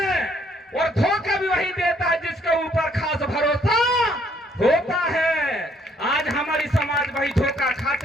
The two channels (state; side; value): normal; both; correlation 0.66